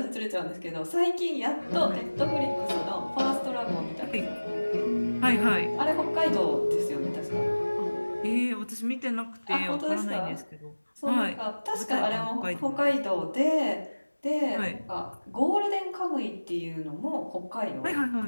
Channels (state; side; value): inverted; both; correlation -1.00